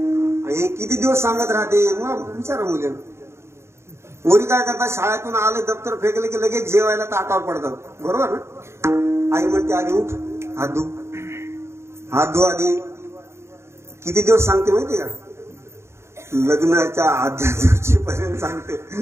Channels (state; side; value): late; left; 0.13 ms